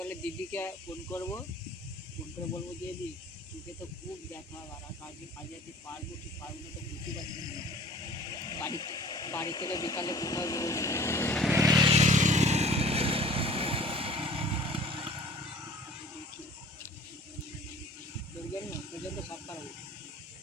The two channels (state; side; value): normal; both; correlation 0.48